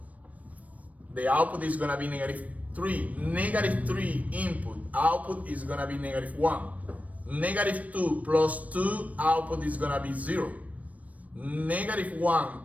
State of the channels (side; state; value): left; late; 0.069 ms